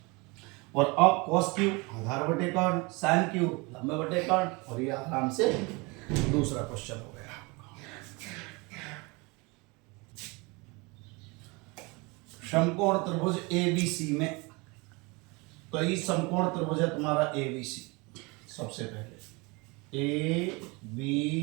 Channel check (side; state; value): left; quieter; 27.1 dB